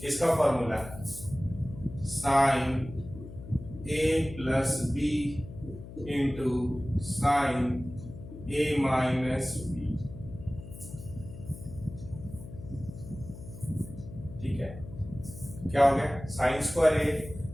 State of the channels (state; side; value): noise; left; hum, 13 dB below the sound